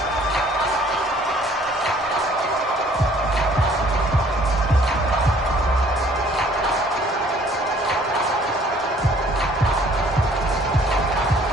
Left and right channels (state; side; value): normal; both; correlation 0.57